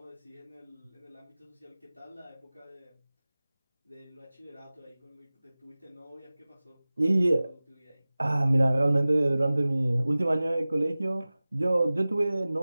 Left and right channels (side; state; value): both; inverted; correlation -0.98